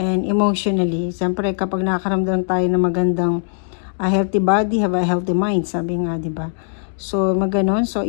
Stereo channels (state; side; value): silent; right; digital silence